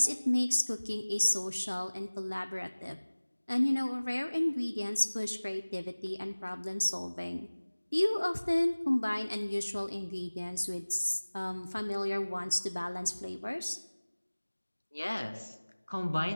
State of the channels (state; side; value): inverted; both; correlation -1.00